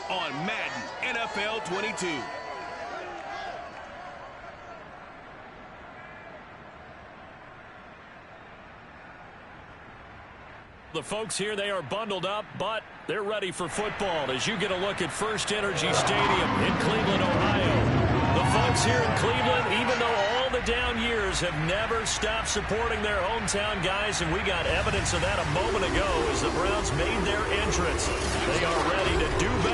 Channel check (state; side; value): identical; both; correlation 1.00